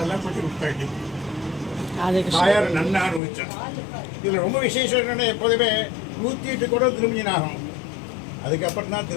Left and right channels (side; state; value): right; drops out; at 3.2 s